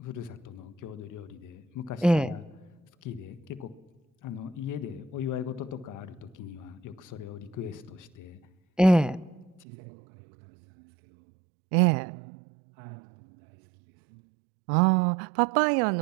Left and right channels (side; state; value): left; drops out; at 9.7 s